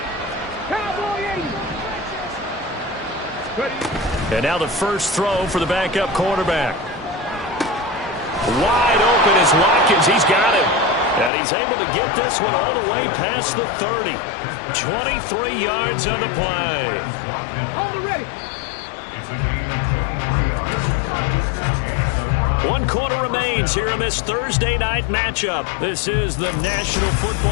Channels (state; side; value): drops out; right; at 11.3 s